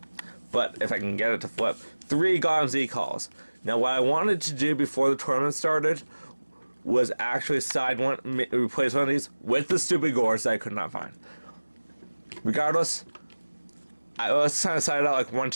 but if I can get it to flip, 3 God Z-Calls. Now, what I wanted to do before the tournament started was actually replace one of these with the stupid Gores that I could not find. Regardless, I was trying to side out like 1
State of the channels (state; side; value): inverted; both; correlation -1.00